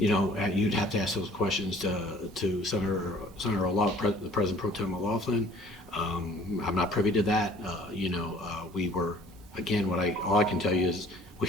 You'd have to ask those questions to Senator O'Loughlin, the President Pro Tem O'Loughlin. I'm not privy to that. We were, again, all I can tell you is we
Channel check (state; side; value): normal; both; correlation 0.53